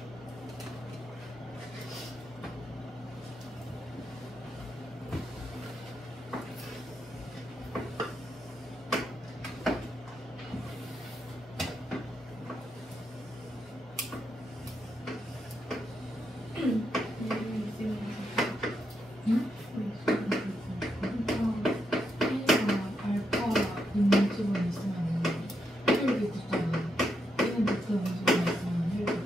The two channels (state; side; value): normal; both; correlation 0.81